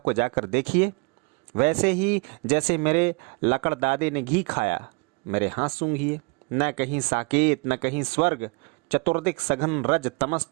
जाकर देखिए। वैसे ही जैसे मेरे लकड़दादे ने घी खाया, मेरे हाथ सूंघिए। न कहीं साकेत, न कहीं स्वर्ग, चतुर्दिक सघन रज तमस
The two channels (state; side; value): quieter; left; 30.3 dB